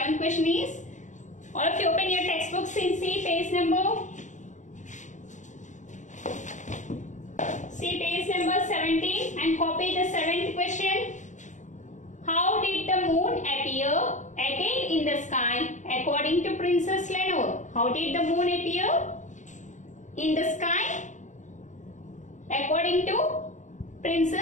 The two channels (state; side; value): late; right; 0.35 ms